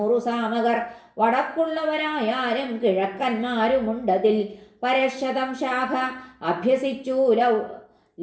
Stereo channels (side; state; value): both; identical; correlation 1.00